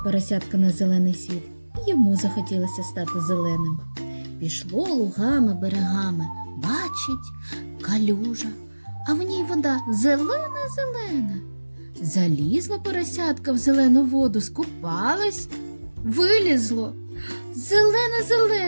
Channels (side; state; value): both; inverted; correlation -1.00